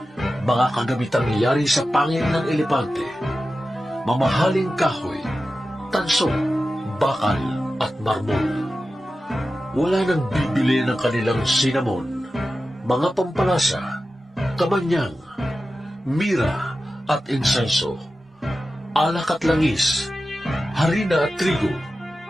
mga kagamitang yari sa pangil ng elepante, mamahaling kahoy, tanso, bakal at marmol. Wala nang bibili ng kanilang sinamon, mga pampalasa, kamanyang, mira at insenso, alak at langis, harina at trigo,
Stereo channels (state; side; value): normal; both; correlation 0.93